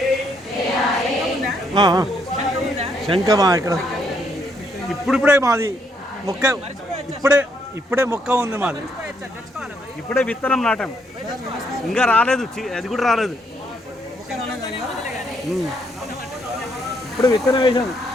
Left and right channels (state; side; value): normal; both; correlation 0.73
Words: శంఖమా ఇక్కడ ఇప్పుడిప్పుడే మాది మొక్క ఇప్పుడే మొక్క ఉంది మాది. ఇప్పుడే విత్తనం నాటాం, ఇంకా రాలేదు, అది కూడా రాలేదు. ఇప్పుడు విత్తనం వేసాను.